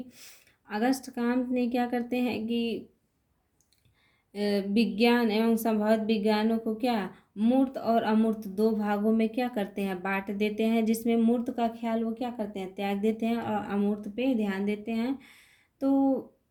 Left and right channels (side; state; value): both; identical; correlation 1.00